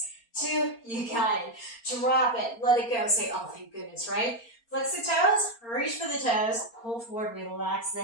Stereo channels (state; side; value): late; right; 4.3 ms